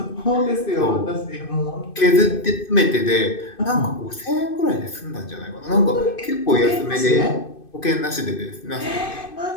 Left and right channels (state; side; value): late; right; 2.5 ms